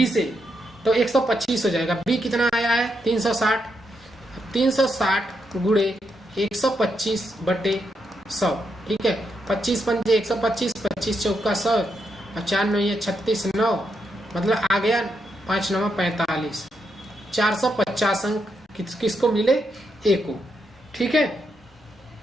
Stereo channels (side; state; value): both; normal; correlation 0.81